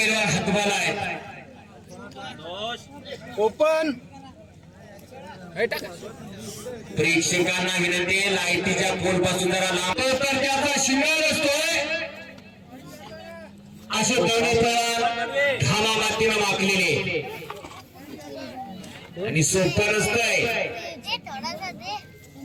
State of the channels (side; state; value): both; identical; correlation 1.00